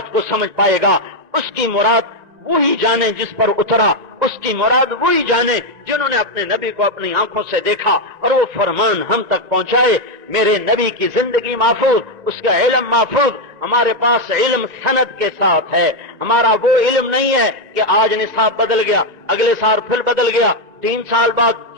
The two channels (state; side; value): late; left; 1.9 ms